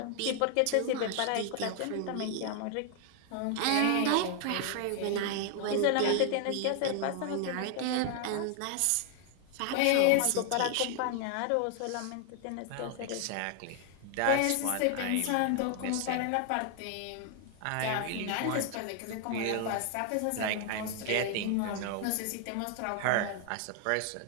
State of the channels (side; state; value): both; different; correlation 0.00